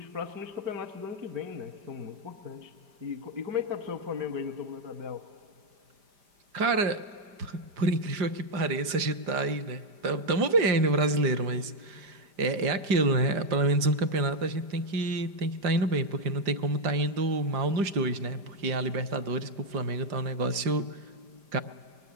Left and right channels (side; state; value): left; late; 5.0 ms